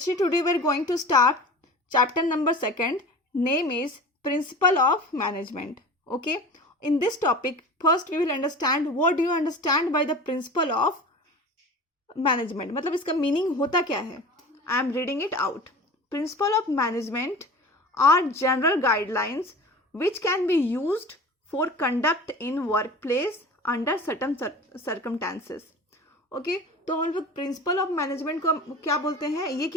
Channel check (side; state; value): both; normal; correlation 0.37